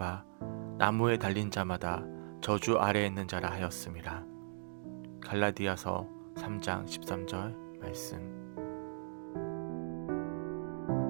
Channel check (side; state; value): left; silent; digital silence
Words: 나무에 달린 자마다 저주 아래에 있는 자라 하였음이라. 갈라디아서 3장 13절 말씀.